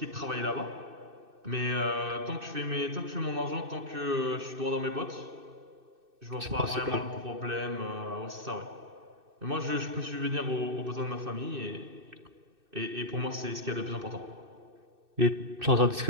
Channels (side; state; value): left; late; 2.6 ms